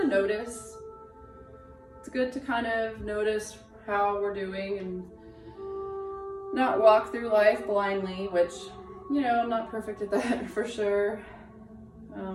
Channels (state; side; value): identical; both; correlation 1.00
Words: of notice. It's good to kind of notice how we're doing and not walk through life blindly, which, you know, I'm not perfect at that for sure.